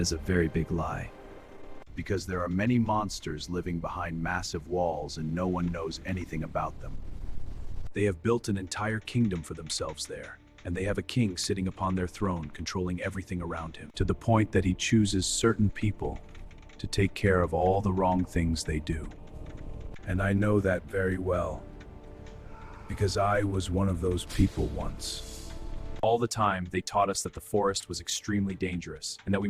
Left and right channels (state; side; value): identical; both; correlation 1.00